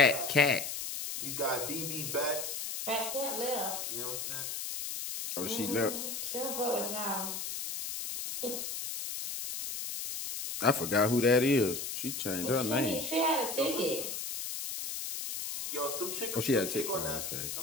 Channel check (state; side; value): noise; left; hiss, 5 dB below the sound